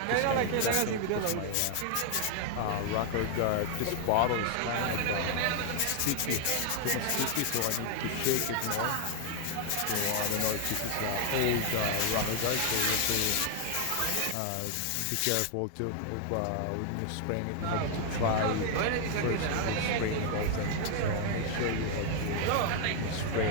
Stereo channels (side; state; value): both; different; correlation 0.00